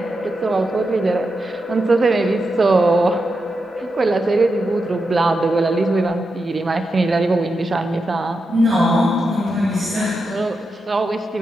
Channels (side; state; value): both; normal; correlation 0.87